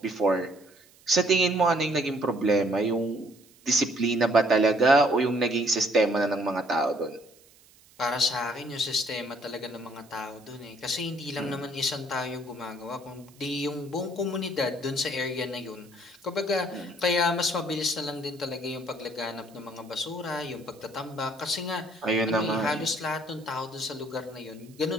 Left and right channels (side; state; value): right; noise; hiss, 27 dB below the sound